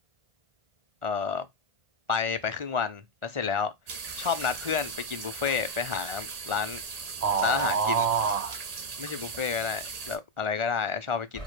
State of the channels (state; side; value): late; left; 1.8 ms